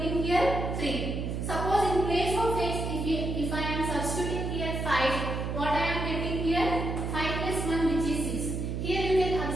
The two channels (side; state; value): right; noise; hum, 3 dB below the sound